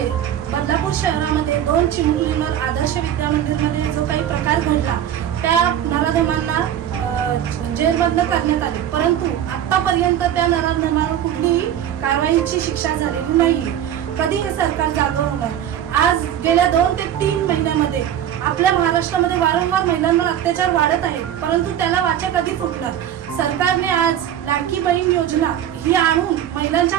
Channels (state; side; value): quieter; left; 10.5 dB